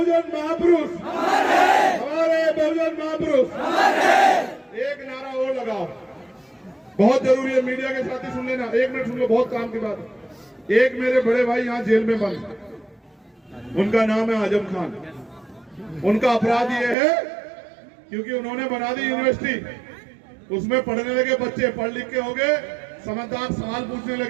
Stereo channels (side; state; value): left; drops out; at 16.9 s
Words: महापुरुष, हमारे बहुजन महापुरुष। एक नारा और लगाओ, बहुत जरूरी है, मीडिया के साथी सुन लेना, एक मिनट सुन लो, बहुत काम की बात है। एक मेरे बड़े भाई यहाँ जेल में बंद, उनका नाम है आजम खान। उनका अपराध ये है क्योंकि उन्होंने बना दी यूनिवर्सिटी, उसमें पढ़ने लगे बच्चे, पढ़ लिख के हो गए समझदार, सवाल पूछने